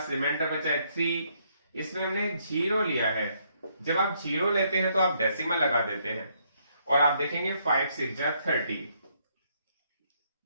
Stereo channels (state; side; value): inverted; both; correlation -0.72